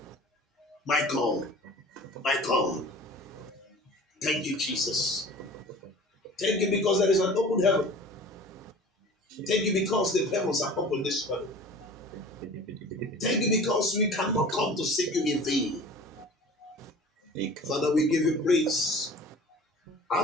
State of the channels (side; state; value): both; normal; correlation 0.42